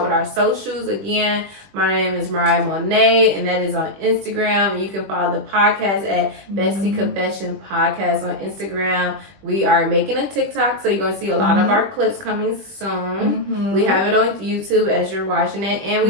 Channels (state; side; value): late; left; 20 ms